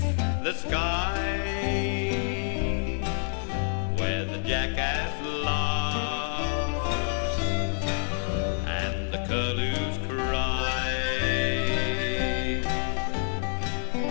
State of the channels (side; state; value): right; silent; digital silence